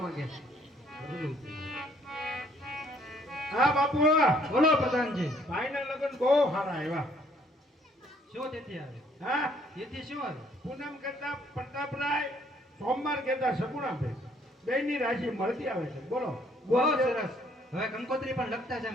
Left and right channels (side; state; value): both; normal; correlation 0.64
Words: માંગે. હા બાપુ બોલો પ્રધાનજી. ભાઈના લગ્ન બહુ સારા આવ્યા. શું તિથિ આવે? હા તિથિ શું આવે? પૂનમ કહેતા પ્રતાપરાય, સોમવાર કહેતા સગુણાભાઈ. બેની રાશિ મળતી આવે છે. બોલો બહુ સરસ. હવે કંકોત્રી પણ લખતા છે